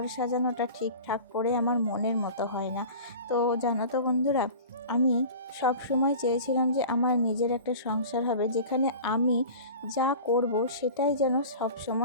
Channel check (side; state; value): both; inverted; correlation -0.37